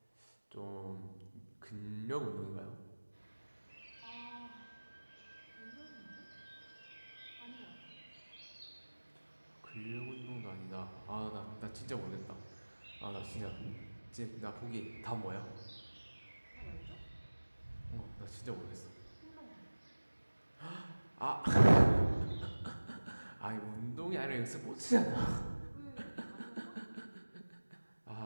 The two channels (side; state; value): both; inverted; correlation -1.00